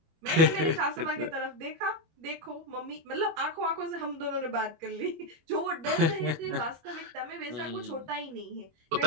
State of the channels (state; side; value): late; left; 25 ms